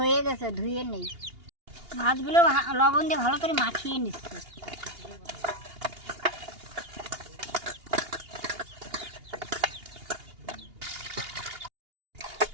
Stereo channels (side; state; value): left; late; 2.8 ms